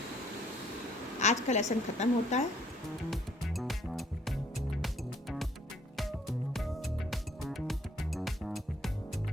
आज का लेसन ख़त्म होता है।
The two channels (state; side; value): normal; both; correlation 0.63